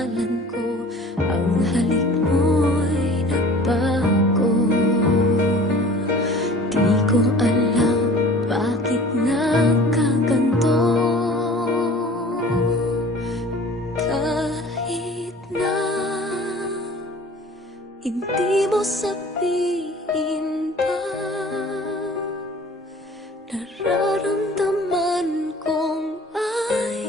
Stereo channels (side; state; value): both; normal; correlation 0.45